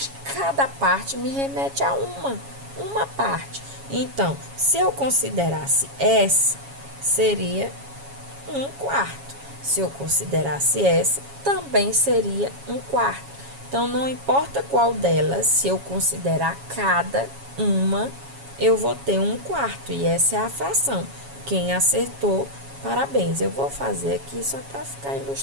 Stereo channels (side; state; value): left; late; 7.2 ms